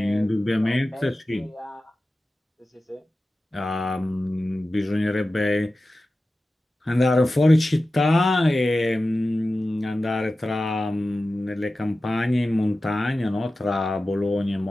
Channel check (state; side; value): normal; both; correlation 0.95